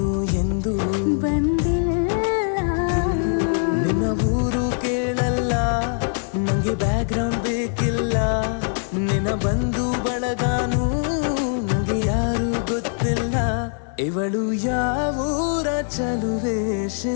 ಎಂದು ಬಂದಿಲ್ಲ. ನಿನ್ನ ಊರು ಕೇಳಲ್ಲ, ನಂಗೆ ಬ್ಯಾಕ್ಗ್ರೌಂಡ್ ಬೇಕಿಲ್ಲ. ನಿನ್ನ ಬಂಧು ಬಳಗಾನು ನಂಗೆ ಯಾರು ಗೊತ್ತಿಲ್ಲ. ಇವಳು ಯಾವೂರ ಚಲುವೆ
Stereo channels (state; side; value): silent; right; digital silence